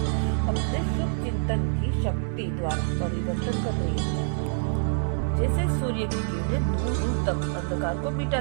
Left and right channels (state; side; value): silent; left; 61 dB below the other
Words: अपने शुभ चिंतन की शक्ति द्वारा परिवर्तन कर रही हो। जैसे सूर्य की किरणें दूर दूर तक अंधकार को